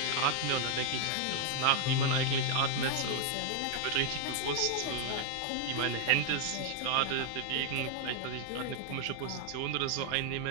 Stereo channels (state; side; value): different; both; correlation 0.00